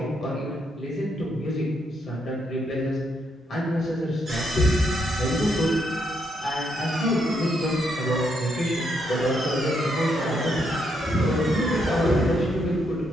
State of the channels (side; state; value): both; normal; correlation 0.76